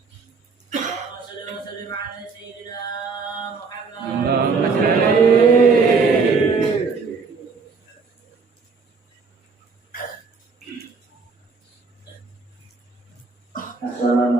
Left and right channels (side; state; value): left; quieter; 4.7 dB